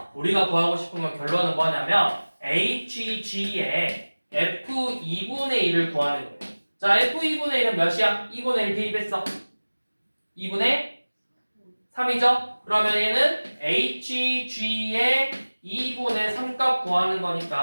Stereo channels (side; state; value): both; inverted; correlation -1.00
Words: 우리가 구하고 싶은 건 결론은 뭐냐면 HG의 F2분의 1을 구하는 거예요. 자, F2분의 1은 몇이야? 2분의 1 대입했어. 2분의 3이죠? 그러면 얘는 HG의 2분의 3값 구하는